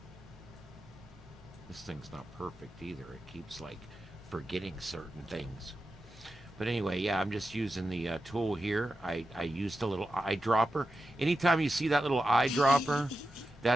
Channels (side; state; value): both; normal; correlation 0.90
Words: This thing's not perfect either. It keeps like forgetting certain things. But anyway, yeah, I'm just using the tool here. I used a little eyedropper. Anytime you see that little eyedropper,